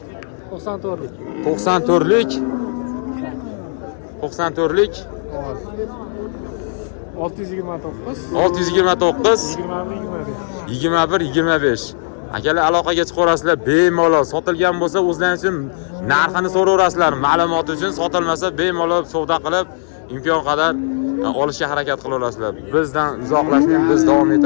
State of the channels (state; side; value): silent; right; digital silence